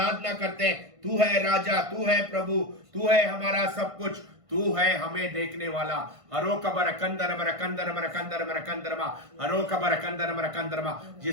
करते हैं। तू है राजा, तू है प्रभु, तू है हमारा सब कुछ, तू है हमें देखने वाला। हरो कबर कंदर बर कंदर बर कंदर बर कंदरमा हरो कबर कंदर बर कंदरमा।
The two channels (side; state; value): left; late; 1.5 ms